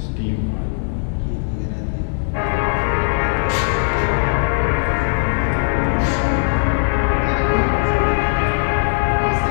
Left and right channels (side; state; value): right; silent; 67 dB below the other